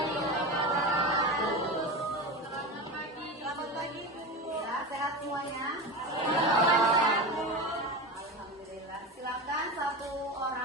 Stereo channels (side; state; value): both; normal; correlation 0.24